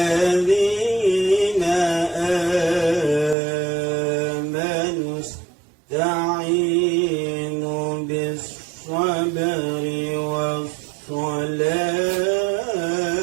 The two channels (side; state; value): left; drops out; at 3.4 s